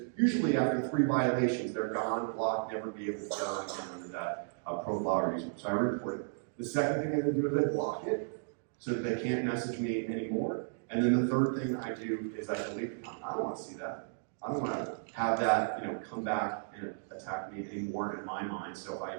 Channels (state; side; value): silent; left; digital silence